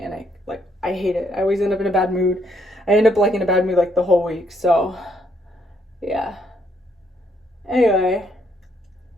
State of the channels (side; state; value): both; normal; correlation 0.72